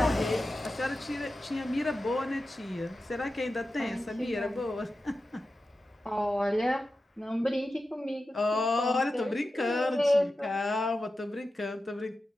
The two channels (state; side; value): normal; both; correlation 0.92